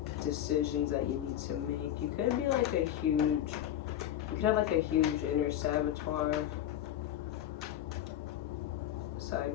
decisions that you need to make. You could be like a huge, you could have like a huge inner saboteur. Side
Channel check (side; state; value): right; quieter; 11.5 dB